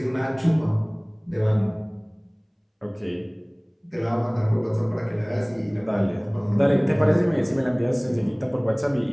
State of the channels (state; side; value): identical; both; correlation 1.00